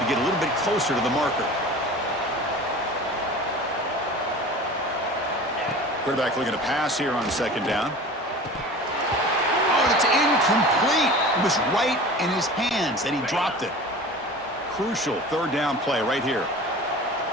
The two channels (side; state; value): both; normal; correlation 0.38